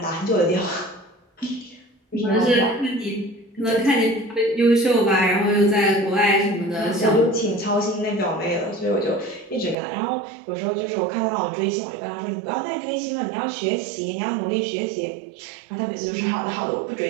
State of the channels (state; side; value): drops out; left; at 9.8 s